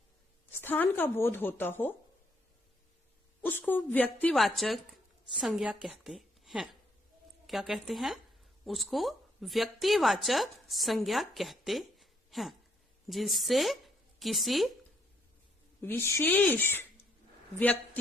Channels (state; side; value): normal; both; correlation 0.70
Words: स्थान का बोध होता हो, उसको व्यक्तिवाचक संज्ञा कहते हैं। क्या कहते हैं? उसको व्यक्तिवाचक संज्ञा कहते हैं, जिससे किसी विशेष